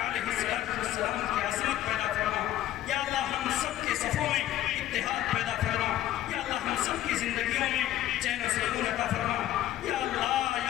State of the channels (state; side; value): quieter; right; 13.4 dB